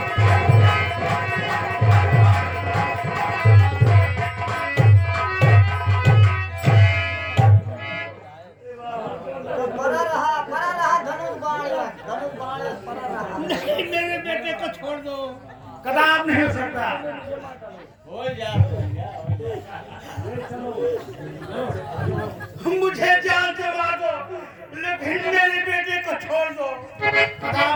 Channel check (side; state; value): both; identical; correlation 1.00